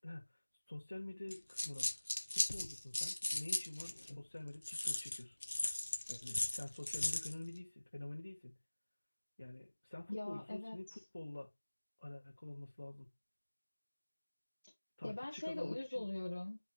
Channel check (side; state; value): both; inverted; correlation -1.00